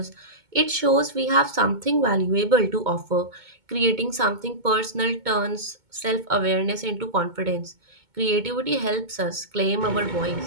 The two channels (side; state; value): left; late; 2.2 ms